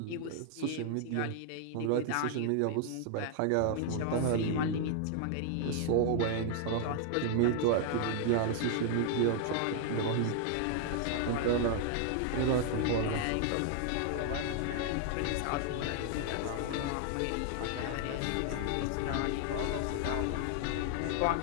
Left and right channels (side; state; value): both; different; correlation 0.00